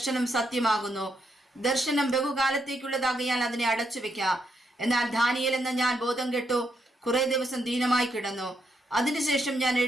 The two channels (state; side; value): normal; both; correlation 0.79